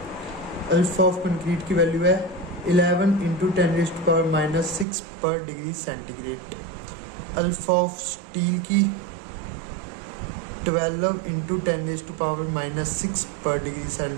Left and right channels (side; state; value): left; drops out; at 4.9 s